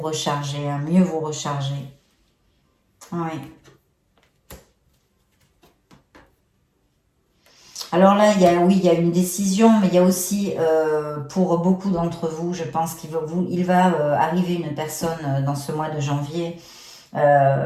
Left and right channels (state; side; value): identical; both; correlation 1.00